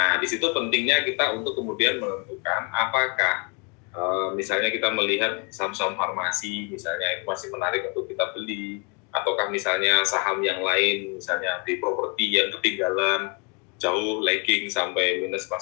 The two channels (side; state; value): right; quieter; 33.8 dB